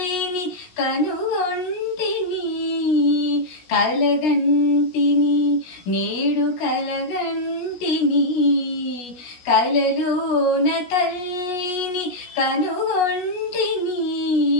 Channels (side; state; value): right; late; 16 ms